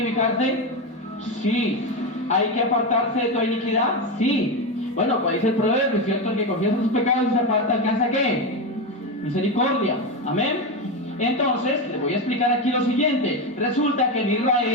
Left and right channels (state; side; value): normal; both; correlation 0.14